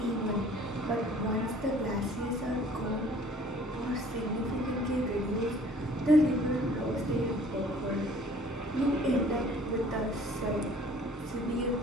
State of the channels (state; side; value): normal; both; correlation 0.53